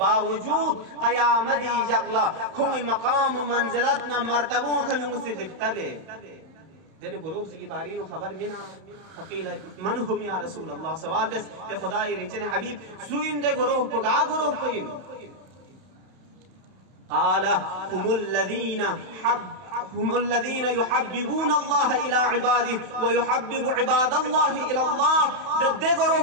क़यामती जगला कोई मकाम व मंजिलत ना मर्तबों के मुझसे दिखतबे दिन गुरोह ची की बारी नु खबर मिना फकील मन हुम या रसूल अल्लाह सवाल बस के खुदाई रिचने हबीब सुइन दे गुरोह को गा गुरोह को इन आला هم الذين يحببون الله إلى عباده ويحبب عباد الله إلى الله दे गरोह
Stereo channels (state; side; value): late; left; 32 ms